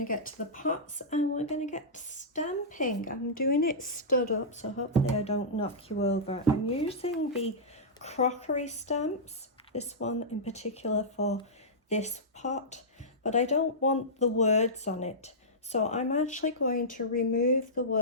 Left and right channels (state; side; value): normal; both; correlation -0.14